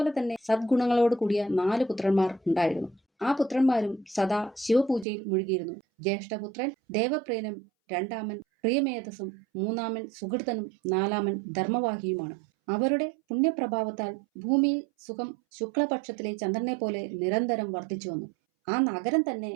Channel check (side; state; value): left; drops out; at 5.1 s